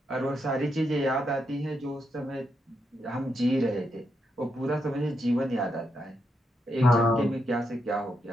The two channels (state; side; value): normal; both; correlation 0.81